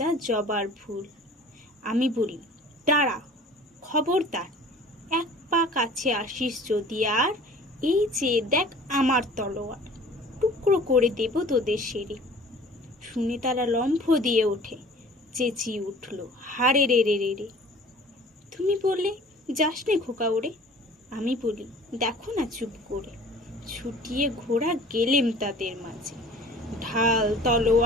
জবার ফুল। আমি বলি দাঁড়া, খবরদার, এক পা কাছে আসিস যদি আর, এই যে দেখ আমার তলোয়ার, টুকরো করে দেব তোদের সেরে। শুনে তারা লম্ফ দিয়ে ওঠে, চেঁচিয়ে উঠল হারে রে রে রে রে। তুমি বললে যাস নে খোকা ওরে, আমি বলি দেখো না চুপ করে। ছুটিয়ে ঘোড়া গেলেম তাদের মাঝে, ঢাল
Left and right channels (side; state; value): both; normal; correlation 0.47